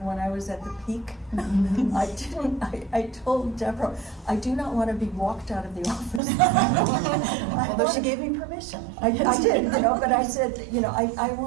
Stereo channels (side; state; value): left; drops out; at 6.2 s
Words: I was at the peak. I told Deborah, I do not want to be walked out of the office. Although she gave me permission. I did, but I said, I